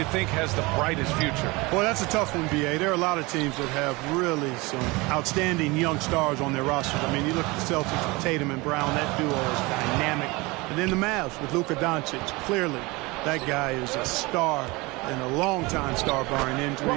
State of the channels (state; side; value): quieter; left; 23.9 dB